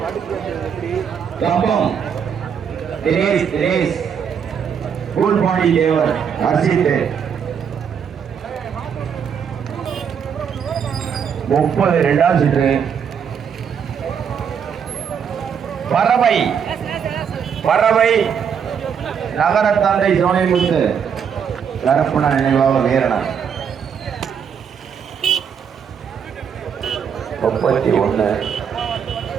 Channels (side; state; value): left; quieter; 7.4 dB